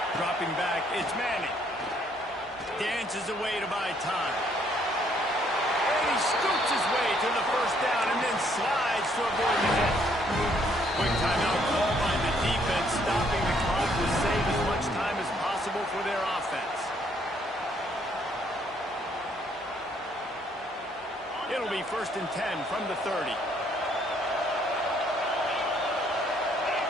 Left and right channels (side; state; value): both; normal; correlation 0.67